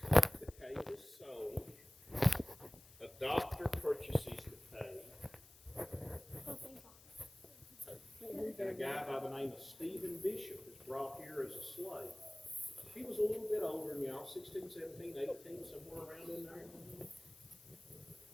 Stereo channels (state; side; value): noise; left; hiss, 22 dB below the sound